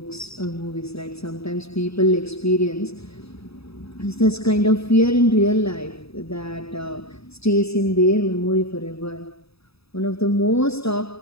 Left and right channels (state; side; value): late; right; 0.78 ms